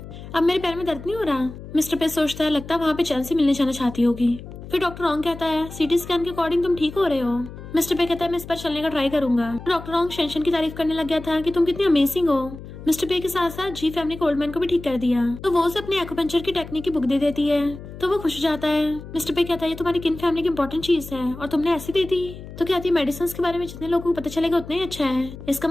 अब मेरे पैर में दर्द नहीं हो रहा। मिस्टर पे सोचता है लगता है वहाँ पे चैन से मिलने जाना चाहती होगी। फिर डॉक्टर रॉन्ग कहता है सीटी स्कैन के अकॉर्डिंग तुम ठीक हो रहे हो। मिस्टर पे कहता है मैं इस पर चलने का ट्राई करूंगा। डॉक्टर रॉन्ग शेंशन की तारीफ करने लग गया था कि तुम कितनी अमेजिंग हो। मिस्टर पे के साथ साथ जी फैमिली को ओल्ड मैन को भी ठीक कर दिया। तो वो उसे अपनी एक्यूपंक्चर की टेक्निक की बुक दे देती है तो वो खुश हो जाता है। मिस्टर पे कहता है ये तुम्हारी किन फैमिली की इंपॉर्टेंट चीज है और तुमने ऐसी दे दी। तो कहती है मेडिसिन के बारे में जितने लोगों को पता चलेगा उतना ही अच्छा है, इसका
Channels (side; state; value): left; noise; hum, 13 dB below the sound